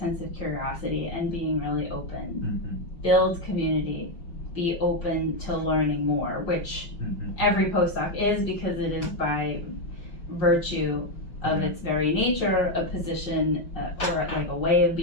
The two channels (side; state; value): right; late; 5.8 ms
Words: of curiosity and being really open. Build community, be open to learning more, which every postdoc is, because it is by virtue of its very nature a position or like a way of